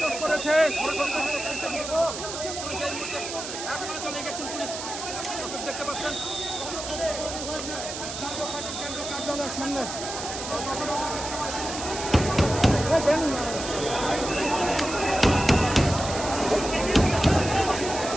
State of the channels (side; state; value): right; noise; hiss, 7 dB below the sound